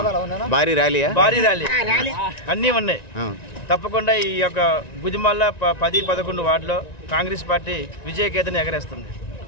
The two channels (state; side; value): late; right; 1.9 ms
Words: భారీ ర్యాలీ అన్నీ ఉన్నాయి. తప్పకుండా ఈ యొక్క గుదిమల్ల 10, 11 వార్డులో కాంగ్రెస్ పార్టీ విజయకేతని ఎగరేస్తుంది.